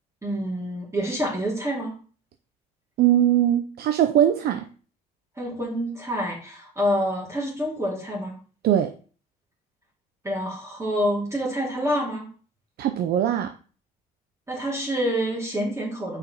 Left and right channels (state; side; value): quieter; left; 4.7 dB